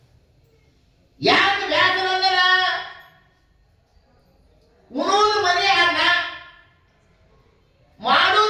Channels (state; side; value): identical; both; correlation 1.00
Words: ಯಾಕೆ ಬೇಸರ ಅಂದ್ರ ಉಣೋದು ಮನೆ ಅನ್ನ,